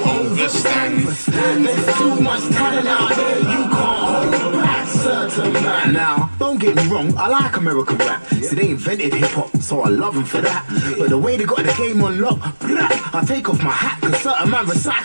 understand. There's too much talent out there, you can't hold back. Certain man. Now, don't get me wrong, I like American rap. See, they invented hip-hop, so I love them for that. But the way they got the game on lock, I take off my hat, cause certain man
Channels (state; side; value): inverted; both; correlation -1.00